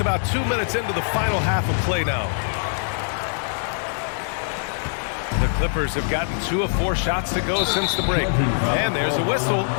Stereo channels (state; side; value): silent; right; 61 dB below the other